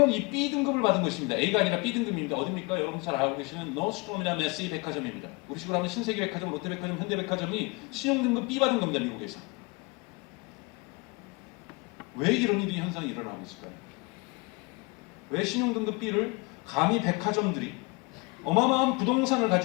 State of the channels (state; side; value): quieter; right; 27.0 dB